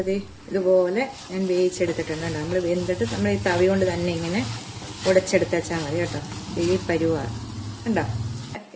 ഇതുപോലെ ഞാൻ വേവിച്ചെടുത്തിട്ടുണ്ട്. നമ്മൾ വെന്തിട്ട് നമ്മൾ ഈ തവി കൊണ്ട് തന്നെ ഇങ്ങനെ ഉടച്ചെടുത്ത് വെച്ചാൽ മതി കേട്ടോ. ഈ പരുവാണ് കണ്ടോ.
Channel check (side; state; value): both; identical; correlation 1.00